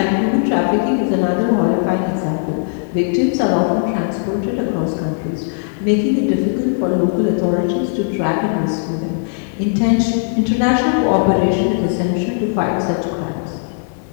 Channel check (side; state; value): right; silent; digital silence